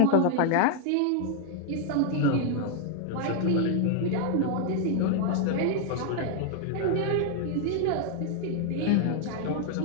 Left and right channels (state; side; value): different; both; correlation 0.00